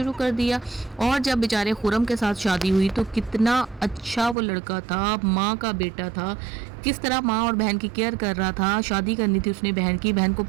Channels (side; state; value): left; drops out; at 4.4 s